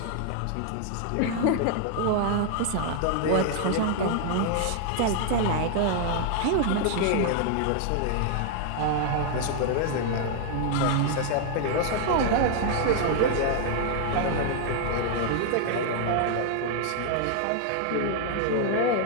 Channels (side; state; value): both; different; correlation 0.00